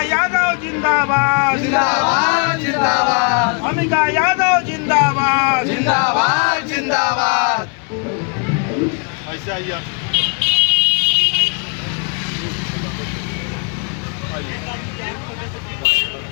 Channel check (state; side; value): quieter; right; 37.3 dB